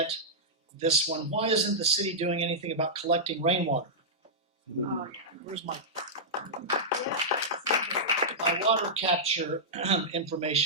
this one. Why isn't the city doing anything about collecting rainwater? Oh, Where's my water capture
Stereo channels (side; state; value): both; normal; correlation -0.10